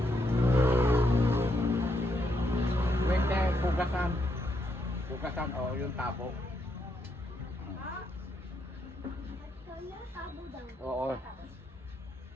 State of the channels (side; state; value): both; normal; correlation 0.77